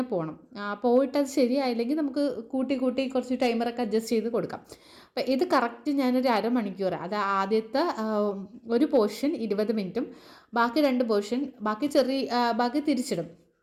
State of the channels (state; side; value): identical; both; correlation 1.00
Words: പോകണം. പോയിട്ടത് ശരിയായില്ലെങ്കിൽ നമുക്ക് കൂട്ടി കുറച്ച് ടൈമറൊക്കെ അഡ്ജസ്റ്റ് ചെയ്ത് കൊടുക്കാം. അപ്പോൾ ഇത് കറക്റ്റ് ഞാനൊരു അരമണിക്കൂർ, അത് ആദ്യത്തെ ഒരു പോർഷൻ 20 മിനിറ്റും ബാക്കി 2 പോർഷൻ ബാക്കി തിരിച്ചിടും.